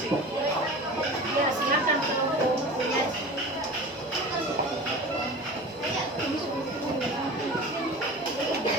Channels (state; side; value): normal; both; correlation 0.35